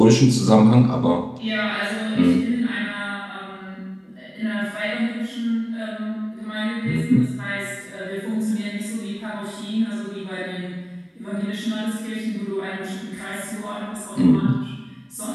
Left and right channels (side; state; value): both; identical; correlation 1.00